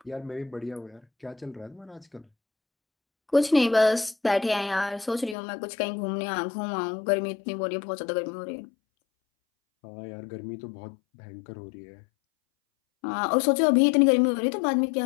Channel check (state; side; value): drops out; right; at 5.4 s